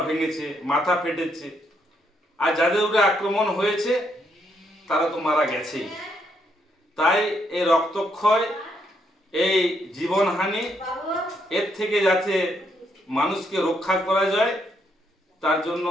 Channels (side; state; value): both; normal; correlation 0.75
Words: ভেঙেছে, মাথা ফেটেছে। আর যাদের উপরে আক্রমণ হয়েছে, তারা তো মারা গেছেই। তাই এই রক্তক্ষয়, এই জীবনহানি, এর থেকে যাতে মানুষকে রক্ষা করা যায়, তার জন্য